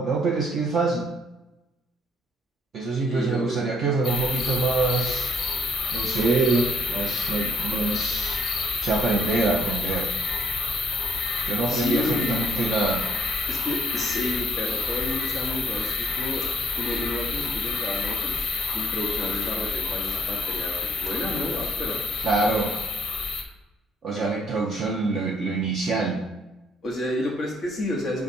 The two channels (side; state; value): both; normal; correlation 0.65